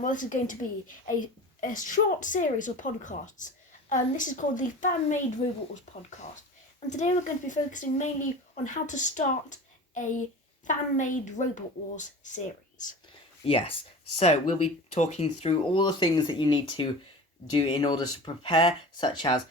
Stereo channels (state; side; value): normal; both; correlation 0.35